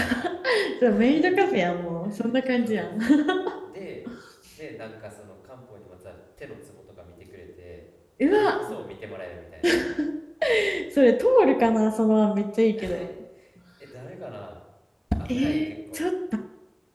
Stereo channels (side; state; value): both; identical; correlation 1.00